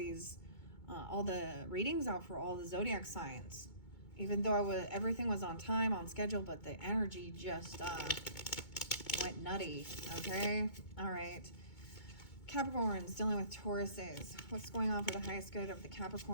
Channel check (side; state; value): right; late; 2.2 ms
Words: all the readings out for all the zodiac signs, even though everything was on time, on schedule, but the energy just went nutty, okay? All right. Capricorns dealing with Tauruses. What's going on for the highest good of the